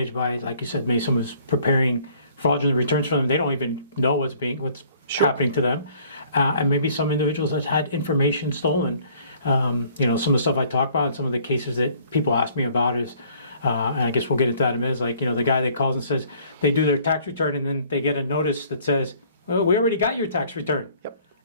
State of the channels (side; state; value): both; inverted; correlation -0.57